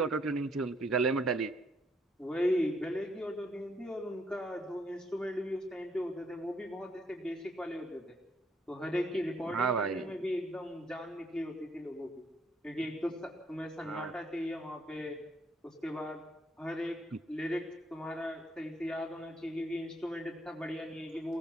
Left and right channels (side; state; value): both; normal; correlation 0.70